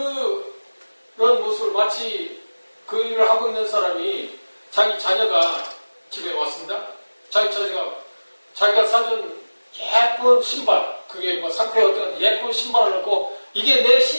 모습을 마치 그 일을 하고 있는 사람이 자기 자녀가 집에 왔습니다. 자기가 사준 예쁜 신발, 그게 뭐 상표에 어떤 예쁜 신발을 넣고 이게 내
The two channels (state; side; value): inverted; both; correlation -1.00